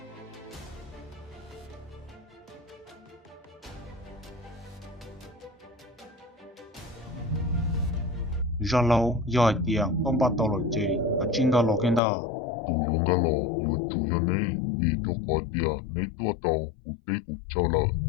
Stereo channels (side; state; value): right; drops out; at 12.0 s